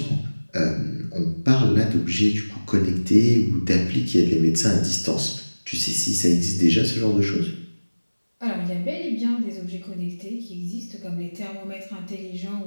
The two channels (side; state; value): both; inverted; correlation -1.00